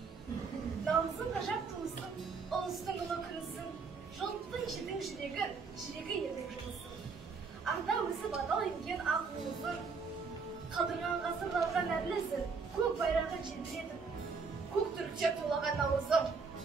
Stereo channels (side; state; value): left; quieter; 4.9 dB